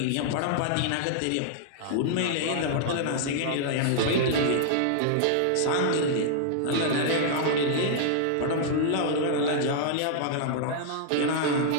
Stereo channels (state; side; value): different; both; correlation -0.01